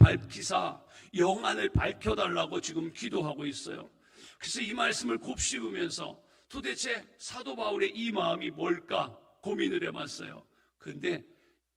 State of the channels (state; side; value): identical; both; correlation 1.00